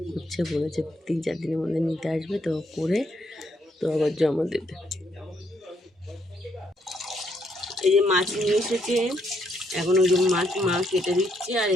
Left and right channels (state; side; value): normal; both; correlation 0.74